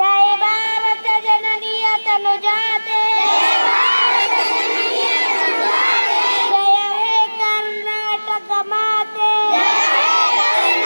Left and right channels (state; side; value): inverted; both; correlation -1.00